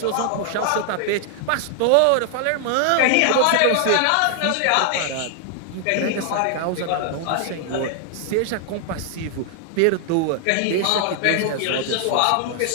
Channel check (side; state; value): both; different; correlation 0.00